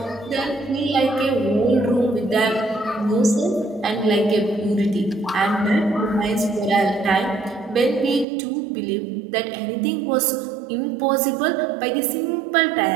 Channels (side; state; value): left; drops out; at 8.2 s